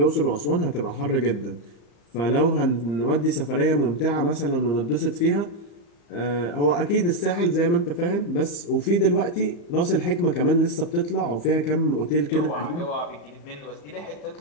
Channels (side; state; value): right; late; 34 ms